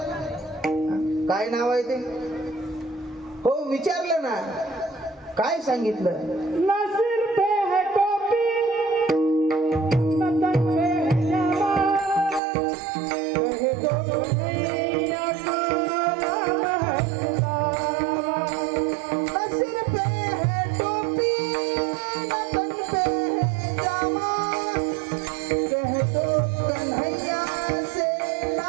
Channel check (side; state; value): left; drops out; at 12.4 s